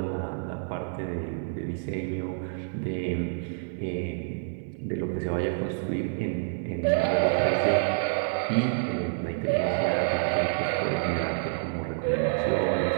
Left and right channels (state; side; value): silent; left; 59 dB below the other